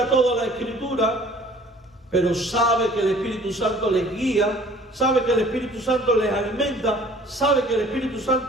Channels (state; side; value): normal; both; correlation 0.52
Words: toda la Escritura, pero sabe que el Espíritu Santo les guía, sabe que el Espíritu Santo les alimenta, sabe que el Espíritu